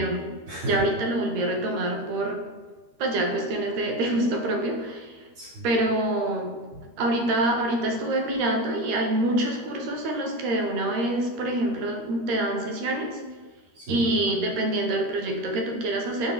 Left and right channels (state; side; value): late; left; 13 ms